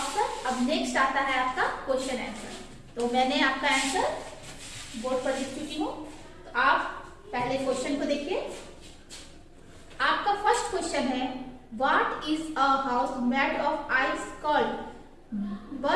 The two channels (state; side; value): identical; both; correlation 1.00